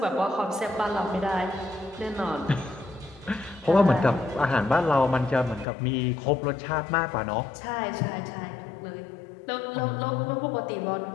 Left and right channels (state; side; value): drops out; right; at 5.7 s